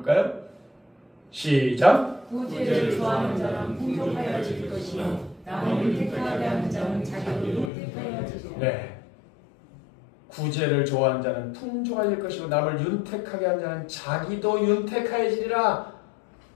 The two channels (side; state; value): right; drops out; at 7.7 s